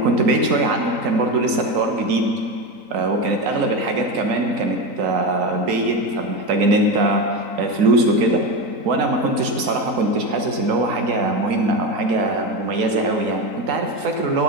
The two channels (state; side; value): late; left; 3.9 ms